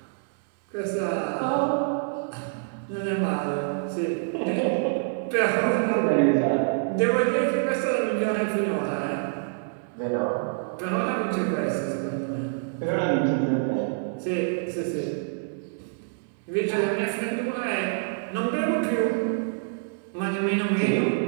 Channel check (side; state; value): left; silent; 59 dB below the other